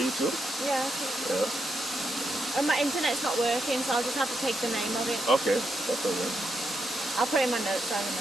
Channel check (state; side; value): normal; both; correlation 0.82